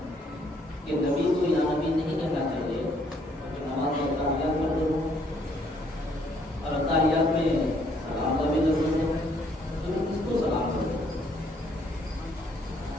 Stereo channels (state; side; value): normal; both; correlation 0.67